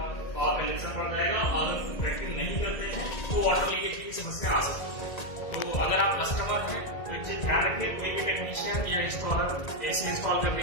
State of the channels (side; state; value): right; late; 1.8 ms